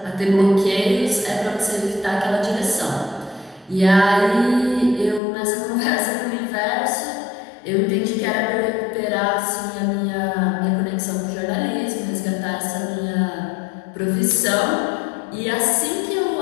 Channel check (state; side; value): drops out; right; at 5.2 s